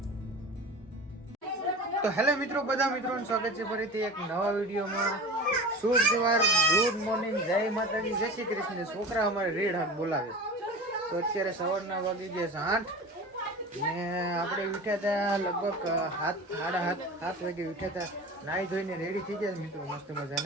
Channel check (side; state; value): both; normal; correlation 0.34